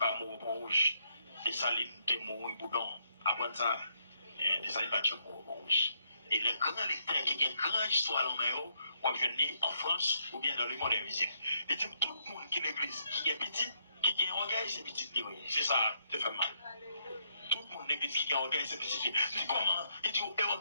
mot rouge. Des salines de mot boudon. Après ça, des salines par mot rouge. Et le grand lecteur qui a une grande histoire en Méro, on vient en France ou bien dans le monde invisible. Et tout le monde qui est l'église, qui est petit, qui a un orgueil, c'est petit. C'est ça, ça fait mal. Tout le monde l'église qui a un orgueil, c'est petit. Il dit comment? Il dit, un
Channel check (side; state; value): both; inverted; correlation -0.74